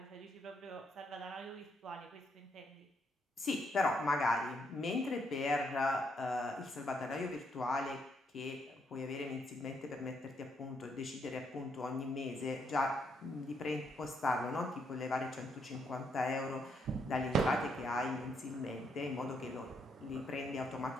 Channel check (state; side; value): normal; both; correlation 0.75